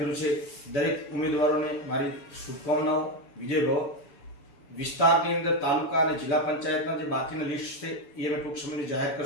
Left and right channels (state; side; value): late; right; 7.0 ms